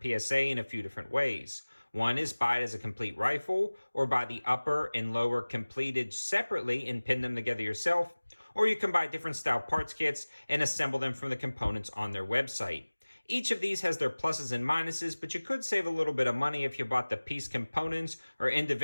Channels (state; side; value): inverted; both; correlation -1.00